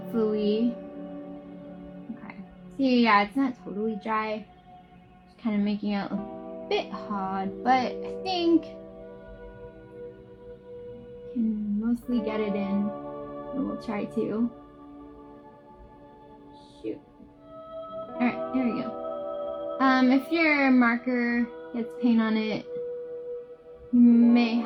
okay. See, yeah, it's not totally dry. Just kind of making it a bit hard, but I think can mostly get it in. And we'll try to. Shoot. All right, there we go. If your marker gets paint on it, you may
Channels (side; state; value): both; identical; correlation 1.00